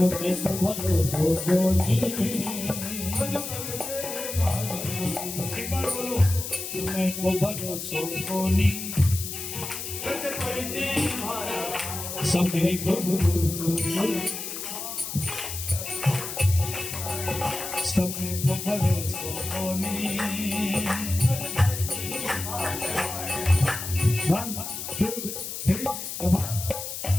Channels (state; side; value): noise; left; hiss, 6 dB below the sound